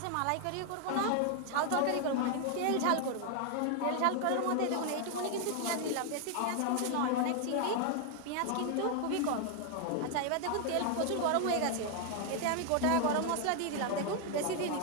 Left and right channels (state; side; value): different; both; correlation 0.00